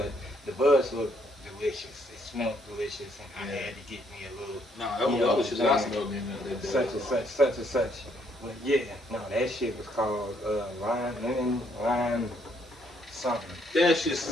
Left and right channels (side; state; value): both; normal; correlation 0.70